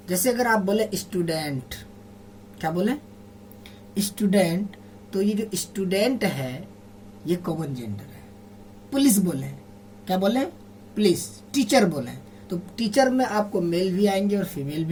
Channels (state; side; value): identical; both; correlation 1.00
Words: जैसे अगर आप बोले स्टूडेंट, क्या बोले, स्टूडेंट, तो ये जो स्टूडेंट है ये कॉमन जेंडर है। पुलिस बोले, क्या बोले, पुलिस। टीचर बोले, तो टीचर में आपको मेल भी आएंगे और फीमेल